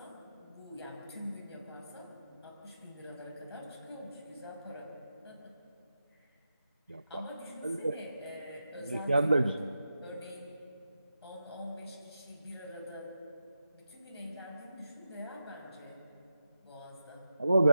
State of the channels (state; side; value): inverted; both; correlation -0.89